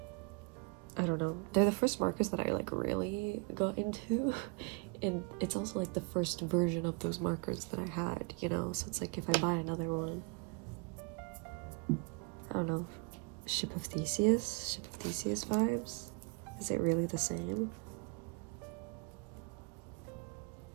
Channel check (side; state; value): left; quieter; 33.1 dB